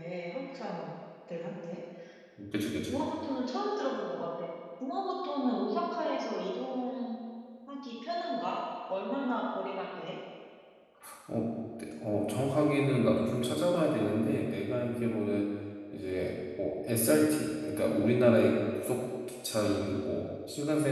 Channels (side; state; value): both; identical; correlation 1.00